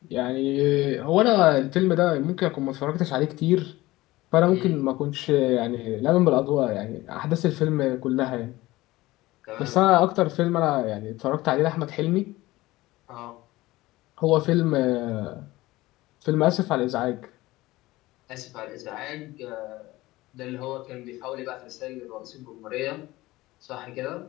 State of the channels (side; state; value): right; quieter; 18.7 dB